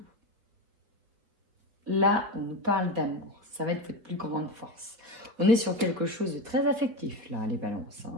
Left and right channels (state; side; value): late; left; 4.7 ms